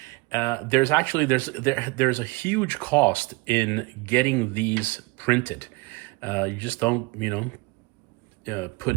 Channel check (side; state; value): left; quieter; 25.6 dB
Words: There's a huge cost in getting these printed. You just don't